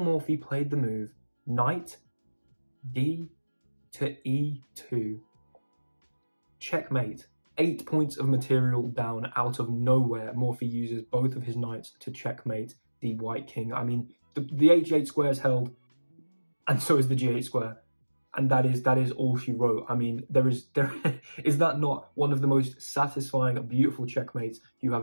Morphy played the move knight d to e2. Checkmate. 8 points of material down out of nowhere. Morphy uses both of his knights to checkmate the white king. I mean, the h8 square is held, and so is the g8 square. And that is all she wrote. I mean, there is that not one of the most satisfying, beautiful checkmates you have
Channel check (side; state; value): both; inverted; correlation -1.00